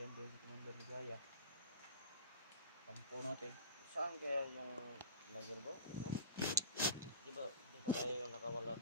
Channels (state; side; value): inverted; both; correlation -0.36